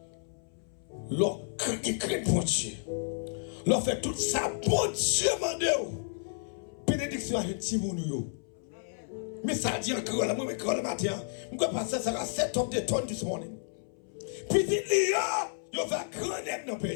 L'homme qui craint bon Dieu. L'on fait tout ça, bon Dieu, mandez-vous. Bénédiction à un petit monde. Mais ça dit encore, là, moi, le matin, je vais passer ça à 7 tonnes de tonnes this morning. Petit lion, il va grandir dans le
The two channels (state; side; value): silent; right; 57 dB below the other